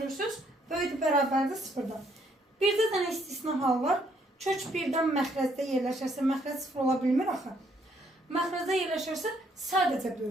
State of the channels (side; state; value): both; normal; correlation 0.69